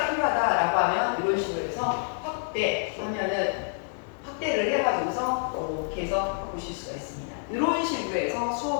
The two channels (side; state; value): right; silent; 60 dB below the other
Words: 필요하다라고 하면 이런 식으로 해서 확대를 해가지고서 이렇게 해서 보실 수가 있습니다. 이런 식으로 해서